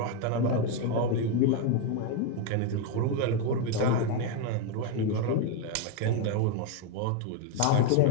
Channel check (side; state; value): both; different; correlation 0.01